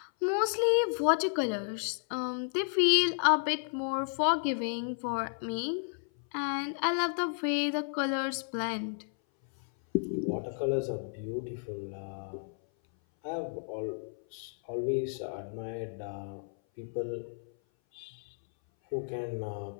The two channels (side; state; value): right; silent; 56 dB below the other